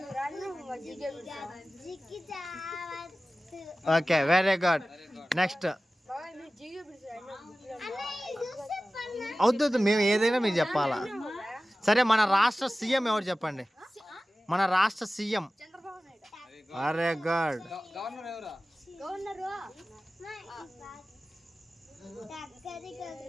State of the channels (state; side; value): normal; both; correlation 0.96